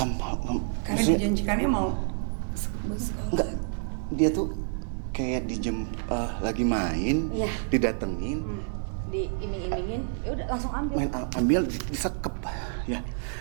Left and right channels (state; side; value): silent; left; 56 dB below the other